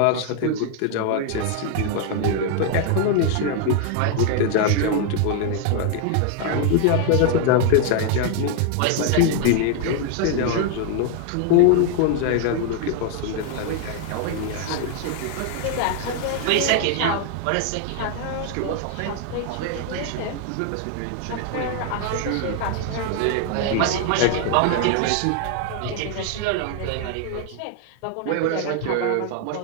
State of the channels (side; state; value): both; different; correlation 0.00